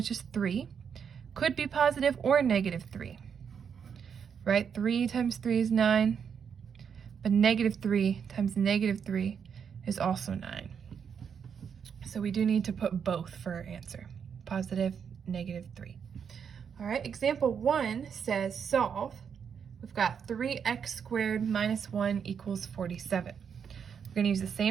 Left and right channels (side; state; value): left; quieter; 7.2 dB